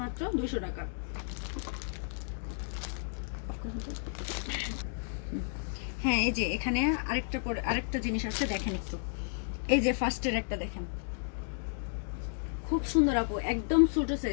মাত্র 200 টাকা। হ্যাঁ এই যে এখানে আরেকটা জিনিস আছে, দেখেন একটু। এই যে ফার্স্টের একটা দেখেন, খুব সুন্দর আপু, একদম ছোট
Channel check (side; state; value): right; silent; digital silence